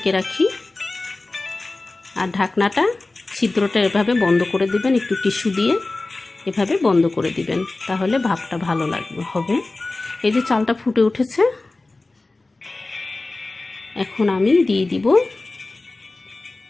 রাখি, আর ঢাকনাটা ছিদ্রটা এভাবে বন্ধ করে দিবেন, একটু টিস্যু দিয়ে এভাবে বন্ধ করে দিবেন, তাহলে ভাপটা ভালো হবে। এই যে চালটা ফুটে উঠেছে, এখন আমি দিয়ে দিব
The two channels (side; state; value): right; quieter; 3.2 dB